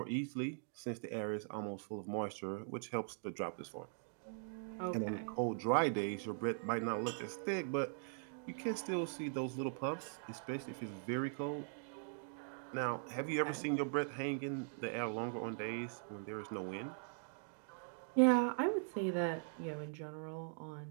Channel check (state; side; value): silent; left; digital silence